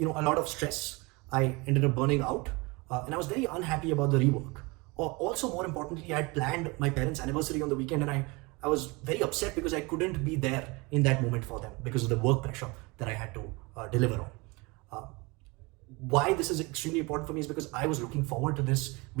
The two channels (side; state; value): left; quieter; 26.1 dB